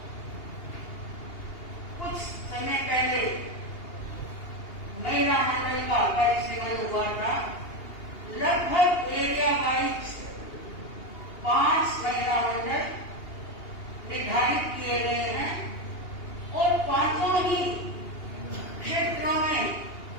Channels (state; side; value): late; right; 2.8 ms